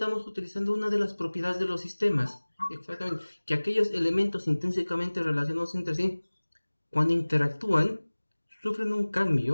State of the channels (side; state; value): both; inverted; correlation -1.00